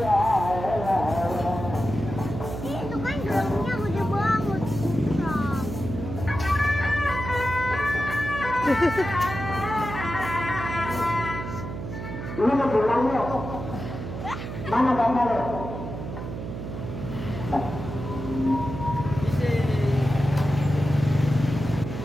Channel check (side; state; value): right; noise; hum, 7 dB below the sound